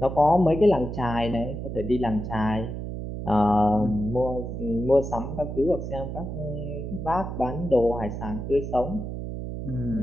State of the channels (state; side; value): noise; right; hum, 6 dB below the sound